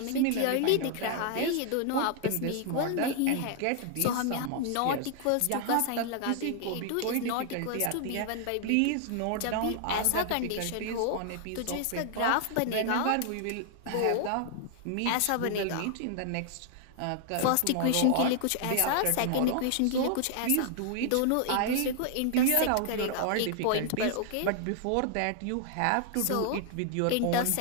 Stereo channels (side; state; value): both; different; correlation 0.00